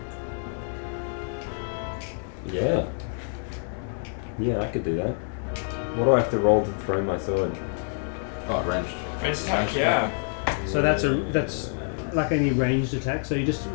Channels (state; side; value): silent; right; 60 dB below the other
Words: Yeah. Yeah, I could do that. What do I have to roll to throw my sword? Oh, ranged. Range attack, yeah. So that's like any ranged attack. So you just